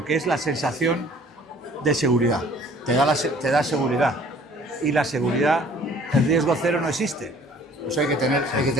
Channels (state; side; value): normal; both; correlation 0.54